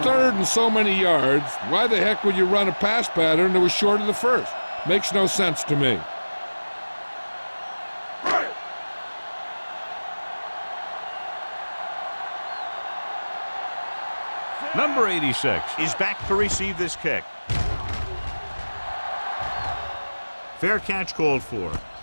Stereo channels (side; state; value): both; inverted; correlation -1.00